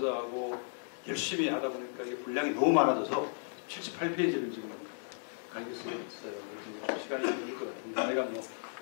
열심히 하다 보니까 이게 분량이 너무 많아져서 78페이지를 지금 가게 쓰게 됐어요. 그래서 좀 시간이 좀 걸릴 것 같은데 내가 뭐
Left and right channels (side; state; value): right; silent; digital silence